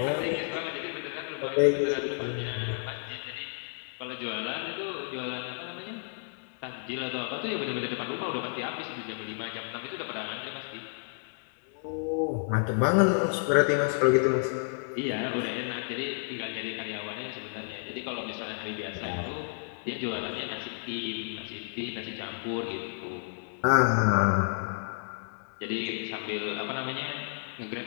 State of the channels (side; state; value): right; silent; digital silence